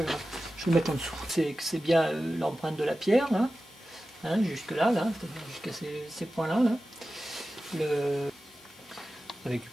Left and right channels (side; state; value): both; normal; correlation 0.94